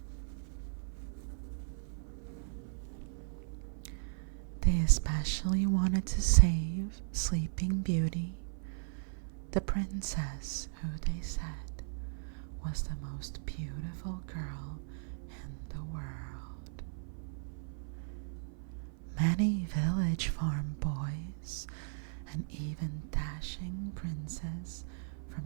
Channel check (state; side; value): silent; left; 53 dB below the other